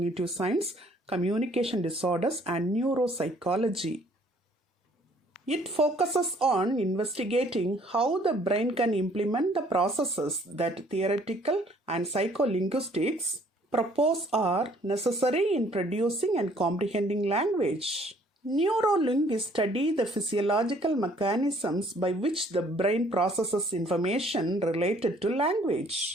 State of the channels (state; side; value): normal; both; correlation 0.60